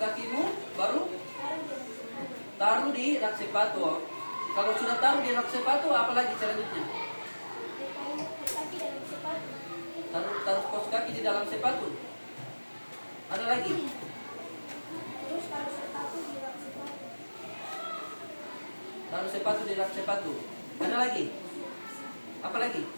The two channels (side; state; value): both; inverted; correlation -1.00